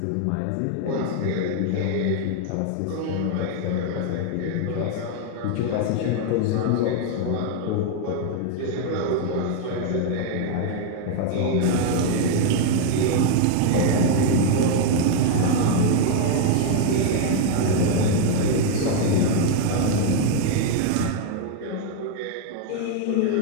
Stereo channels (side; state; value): both; different; correlation 0.00